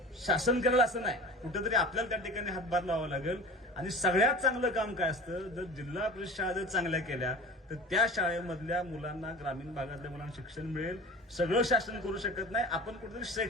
शासन करेल असं नाही, कुठेतरी आपल्याला त्या ठिकाणी हातभार लावावा लागेल. आणि सगळ्यात चांगलं काम काय असतं, जर जिल्हा परिषद शाळा जर चांगल्या केल्या तर त्या शाळेमधल्या मुलांना, ग्रामीण भागातल्या मुलांना शिक्षण मिळेल. सगळं शासन करू शकत नाही, आपण कुठेतरी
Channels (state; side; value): normal; both; correlation 0.37